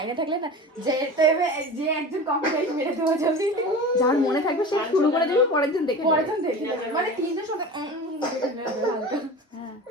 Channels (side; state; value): both; normal; correlation 0.33